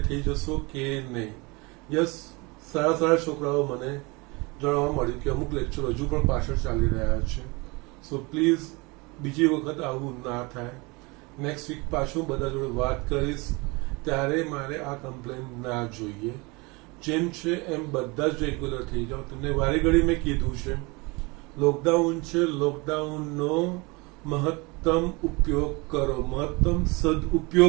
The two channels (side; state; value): left; quieter; 26.4 dB